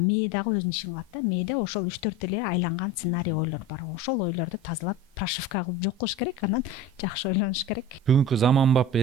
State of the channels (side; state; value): both; normal; correlation 0.33